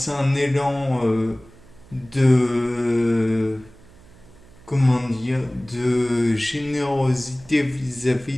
un élan de comment dire, de générosité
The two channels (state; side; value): noise; right; hum, 24 dB below the sound